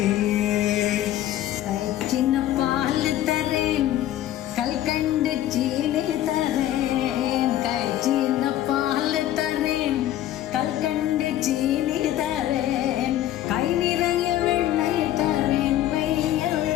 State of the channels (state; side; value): quieter; right; 12.9 dB